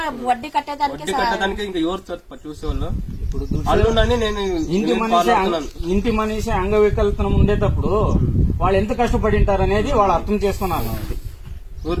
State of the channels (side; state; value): both; identical; correlation 1.00